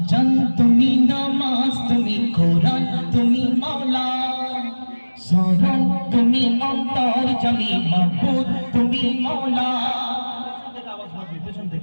আজান তুমি, নামাজ তুমি, কোরআন তুমি মাওলা, শরণ তুমি, অন্তর জামি, মাবুদ তুমি মাওলা।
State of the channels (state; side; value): inverted; both; correlation -1.00